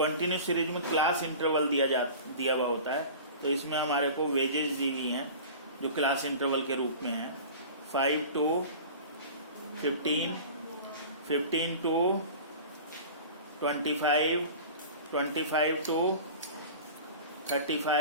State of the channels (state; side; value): inverted; both; correlation -0.37